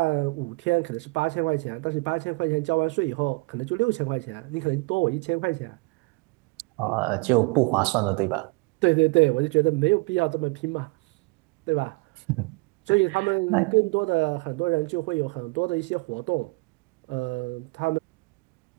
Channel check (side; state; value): left; quieter; 27.4 dB